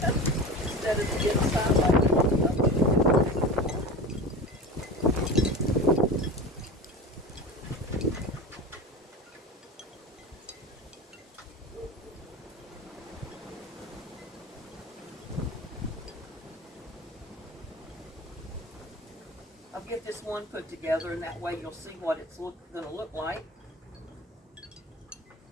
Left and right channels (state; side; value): normal; both; correlation 0.31